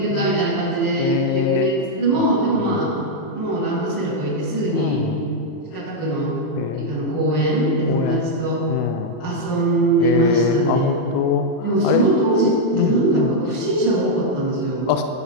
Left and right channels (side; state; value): right; late; 39 ms